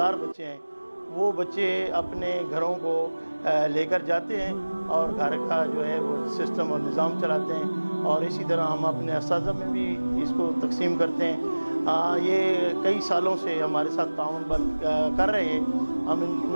बच्चे हैं, वो बच्चे अपने घरों को लेकर जाते हैं और घर का जो है वो सिस्टम और निज़ाम चलाते हैं। और इसी तरह हम अपने असातिज़ा में भी इसको तकसीम करते हैं। ये कई सालों से हमारे साथ ताउन कर रहे हैं, हम इनकी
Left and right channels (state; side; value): inverted; both; correlation -1.00